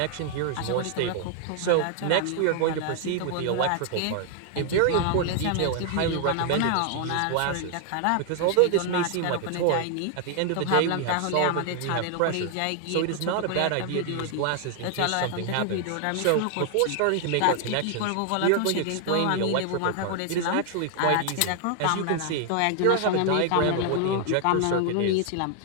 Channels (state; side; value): different; both; correlation 0.00